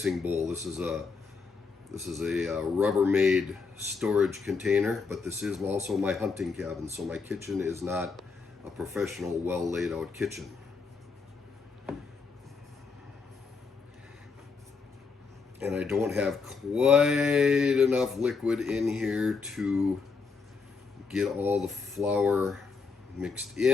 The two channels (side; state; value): right; quieter; 4.8 dB